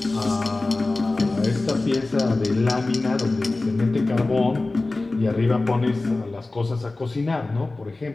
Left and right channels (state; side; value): quieter; right; 3.2 dB